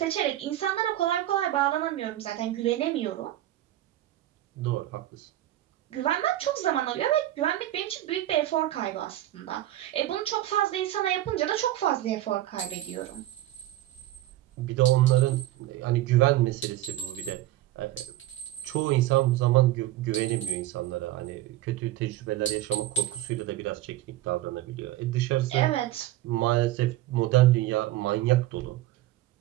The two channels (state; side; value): quieter; left; 14.5 dB